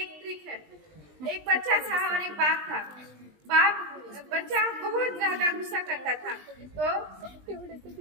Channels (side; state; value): left; late; 20 ms